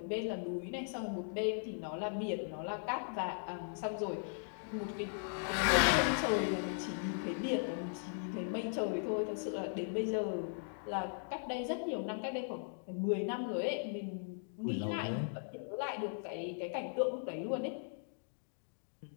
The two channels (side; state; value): right; silent; digital silence